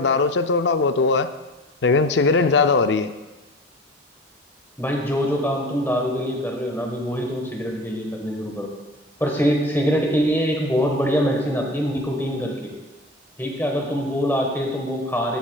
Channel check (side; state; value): both; normal; correlation 0.38